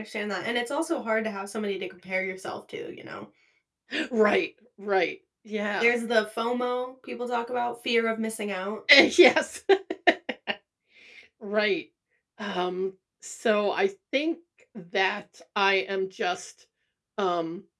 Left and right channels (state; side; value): identical; both; correlation 1.00